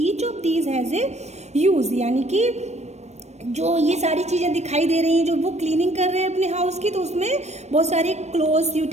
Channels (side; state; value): left; late; 0.32 ms